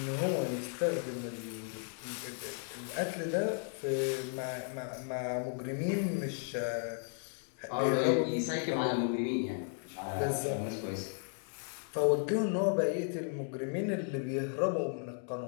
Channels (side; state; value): right; silent; 54 dB below the other